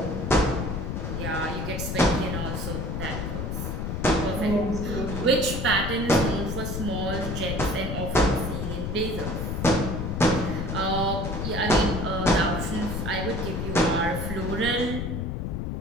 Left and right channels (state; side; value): noise; left; rumble, 3 dB below the sound